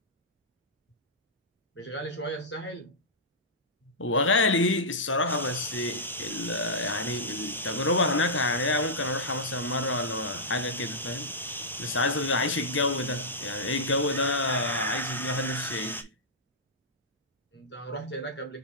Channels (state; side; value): normal; both; correlation -0.12